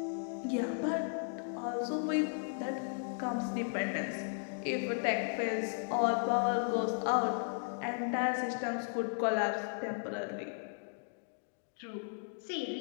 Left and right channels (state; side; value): silent; right; digital silence